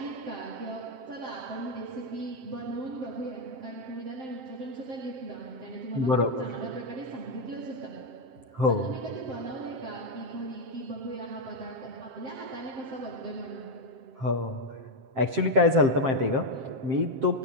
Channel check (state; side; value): late; left; 7.6 ms